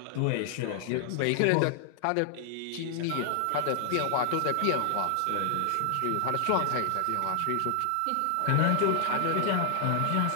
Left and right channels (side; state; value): both; different; correlation -0.01